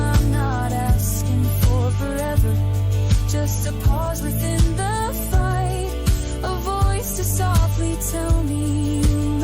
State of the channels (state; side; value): identical; both; correlation 1.00